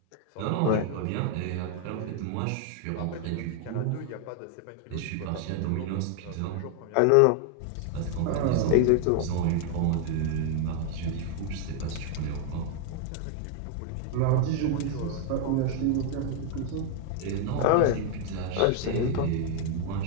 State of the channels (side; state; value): both; different; correlation 0.00